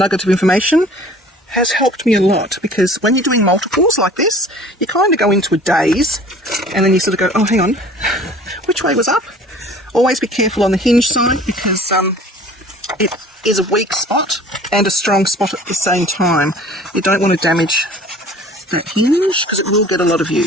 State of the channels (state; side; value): normal; both; correlation 0.48